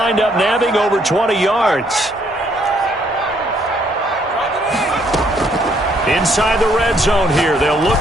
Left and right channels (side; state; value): both; normal; correlation 0.68